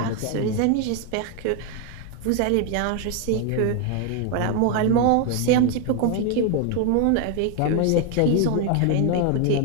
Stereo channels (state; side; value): different; both; correlation 0.01